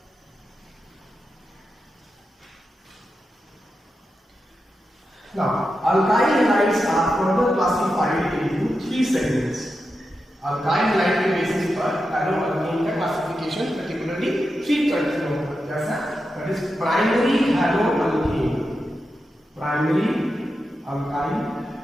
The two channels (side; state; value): both; normal; correlation 0.89